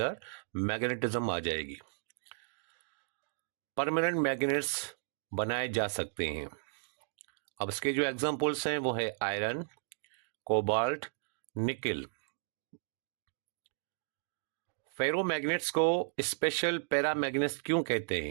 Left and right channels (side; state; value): left; silent; digital silence